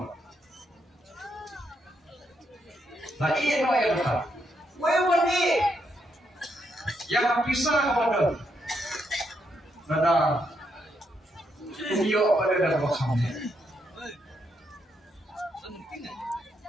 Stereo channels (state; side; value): normal; both; correlation 0.78